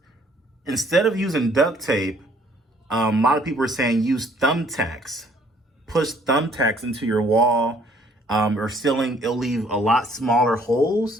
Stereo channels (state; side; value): normal; both; correlation 0.61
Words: Instead of using duct tape, a lot of people are saying use thumbtacks. Push thumbtacks into your wall or ceiling. It'll leave a lot smaller